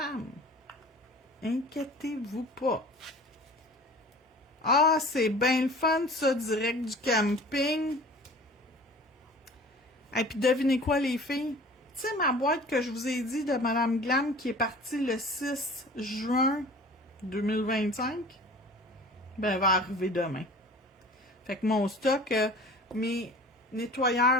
Inquiétez-vous pas. Ah, c'est bien le fun, ça, direct du camping. Et puis, devinez quoi, les filles? Tu sais, ma boîte que je vous ai dit de Madame Glam qui est partie le 6 juin 2025, ben, elle va arriver demain. Fait que mon stock, mes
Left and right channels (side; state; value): both; normal; correlation 0.44